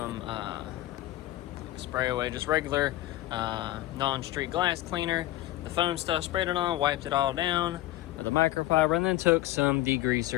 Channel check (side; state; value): right; quieter; 15.9 dB